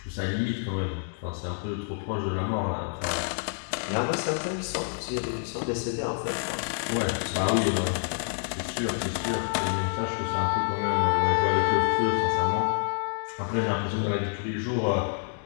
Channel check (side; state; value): right; silent; digital silence